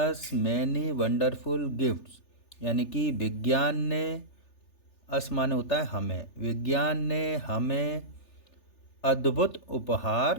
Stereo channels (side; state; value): right; late; 3.4 ms